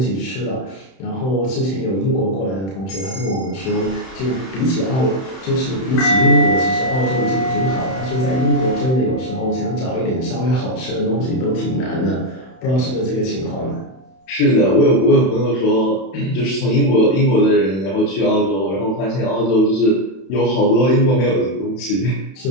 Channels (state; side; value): late; right; 31 ms